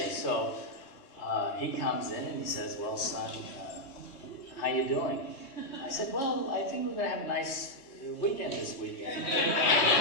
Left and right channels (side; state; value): right; late; 3.6 ms